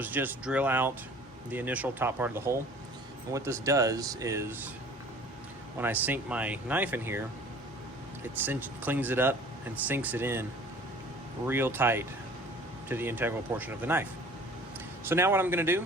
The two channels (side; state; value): both; normal; correlation 0.48